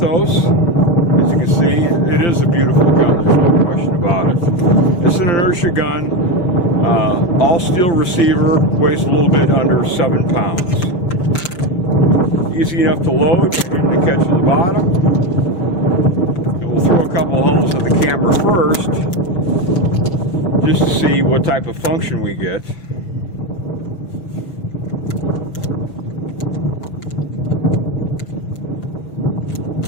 As you can see, it is a beautiful gun, there's no question about it. It's an inertia gun, all steel receiver, weighs a little bit under 7 pounds. Easy enough to load by hitting the catch at the bottom. And we'll throw a couple holes at the camera first, just to see what type of function we get.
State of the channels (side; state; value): right; late; 5.8 ms